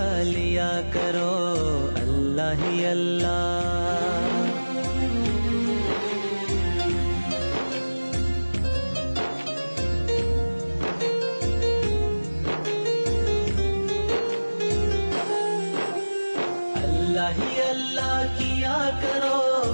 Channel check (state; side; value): inverted; both; correlation -1.00